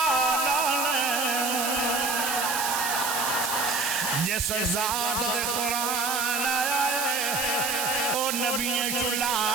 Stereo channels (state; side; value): noise; right; hiss, 1 dB below the sound